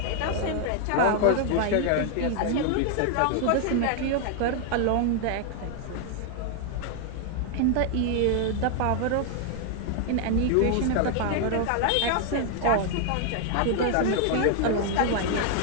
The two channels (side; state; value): both; different; correlation 0.00